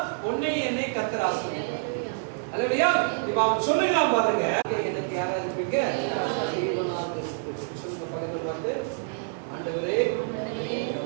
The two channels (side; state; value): left; silent; 58 dB below the other